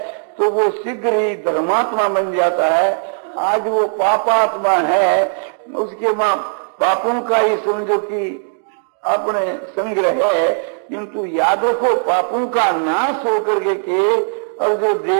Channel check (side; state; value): left; silent; digital silence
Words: तो वो शीघ्र ही धर्मात्मा बन जाता है। आज वो पापात्मा है, उसके माँ पापों का ही समझो कि अपने संग्रह है, किंतु यादों को पापों का नाश होकर के और जो